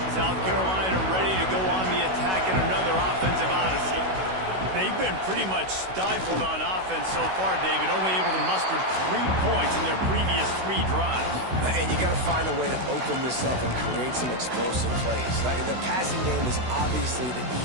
South Carolina ready to go on the attack in another offensive odyssey. They've been pretty much stifled on offense so far, David, only able to muster 3 points in their previous 3 drives. And you got to find a way to open this up and create some explosive plays. Like the passing game is obviously the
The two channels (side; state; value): left; late; 16 ms